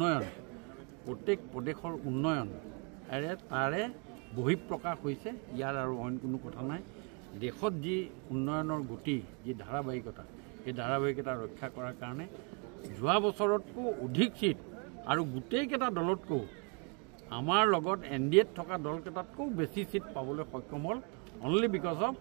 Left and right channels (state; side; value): quieter; left; 35.6 dB